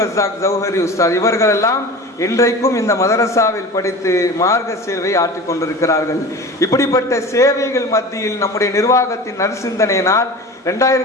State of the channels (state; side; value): normal; both; correlation 0.35